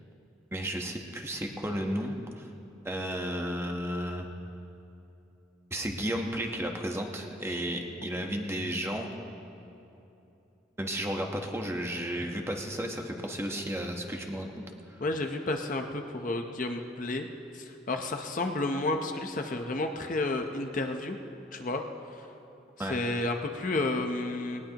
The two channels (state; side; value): normal; both; correlation 0.54